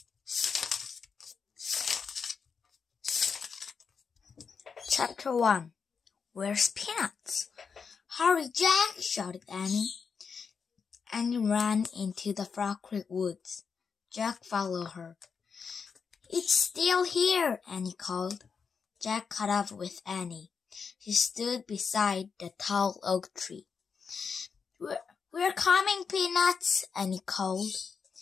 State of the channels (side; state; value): right; quieter; 5.8 dB